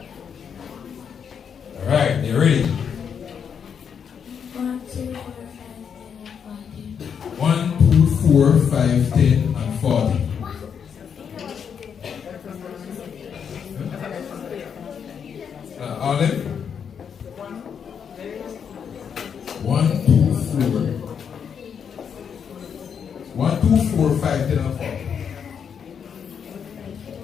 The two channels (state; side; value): quieter; right; 7.3 dB